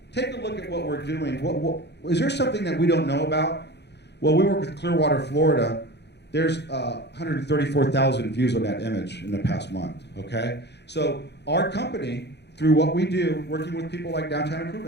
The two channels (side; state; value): right; late; 0.50 ms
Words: take a look at what we're doing. Is there something that we don't know about? Well, we work with Clearwater, Florida, There's 134,000 views on that image in the past month, okay? So our company, through what we do, working with people like Downtown